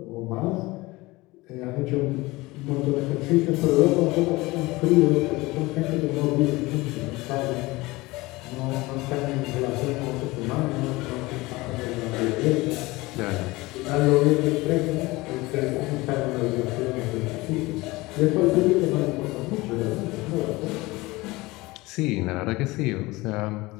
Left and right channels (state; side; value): quieter; right; 21.3 dB